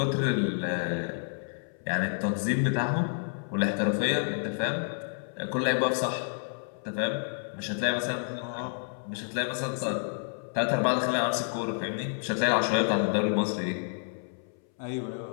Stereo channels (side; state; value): right; silent; 58 dB below the other